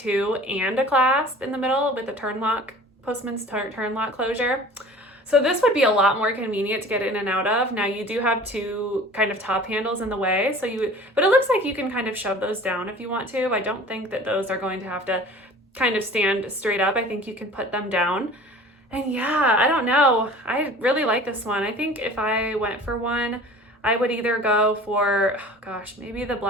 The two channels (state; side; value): normal; both; correlation 0.44